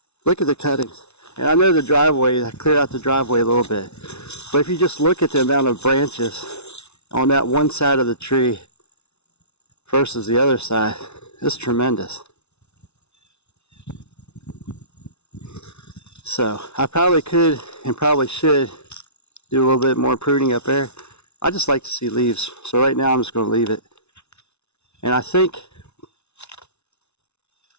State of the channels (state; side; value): late; right; 0.81 ms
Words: Look at the cuttings. And I know the driveway, I cleared out the driveway a little bit. But if you just look at the amount of branches on that one side of the tree versus the other side, it's tremendous. So I probably could and probably should do a little bit more pruning up there. I just like to see leaves. So right now I'm just going to leave it. And I think